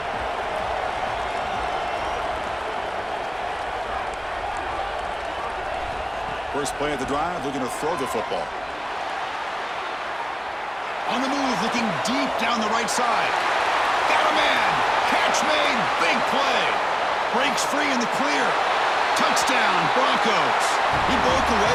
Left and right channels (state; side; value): identical; both; correlation 1.00